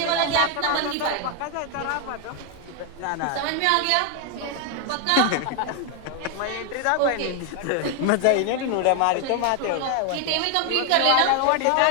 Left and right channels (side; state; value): both; different; correlation 0.01